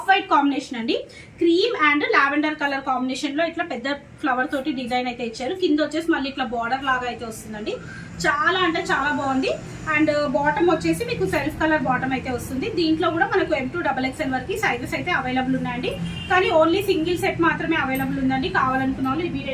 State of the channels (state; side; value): identical; both; correlation 1.00